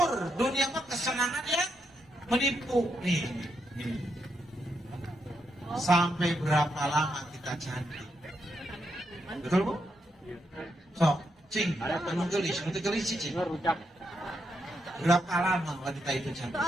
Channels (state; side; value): normal; both; correlation 0.81